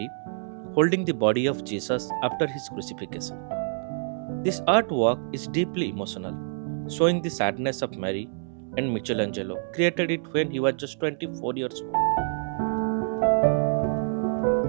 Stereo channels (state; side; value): silent; left; 60 dB below the other